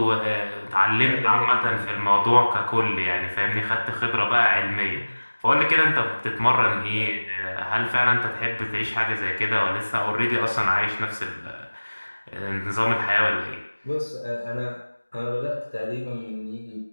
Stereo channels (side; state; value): both; inverted; correlation -1.00